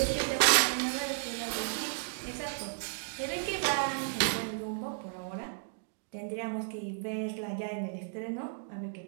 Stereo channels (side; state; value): left; silent; digital silence